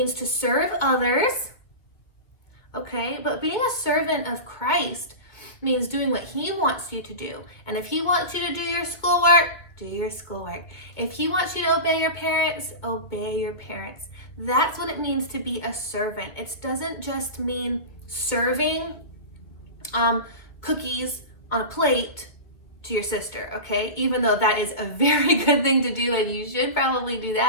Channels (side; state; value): right; late; 2.0 ms